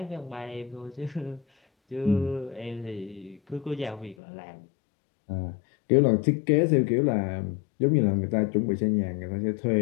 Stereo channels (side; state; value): right; drops out; at 4.2 s